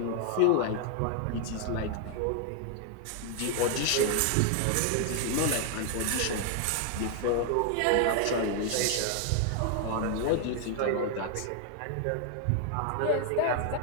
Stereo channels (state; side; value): different; both; correlation 0.00